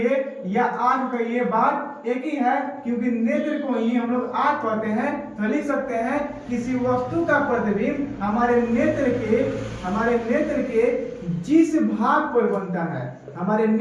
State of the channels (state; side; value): identical; both; correlation 1.00